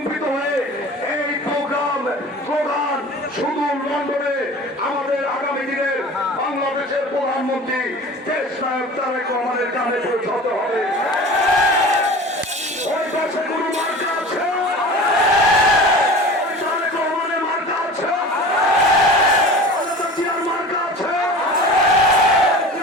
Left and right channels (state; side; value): normal; both; correlation 0.38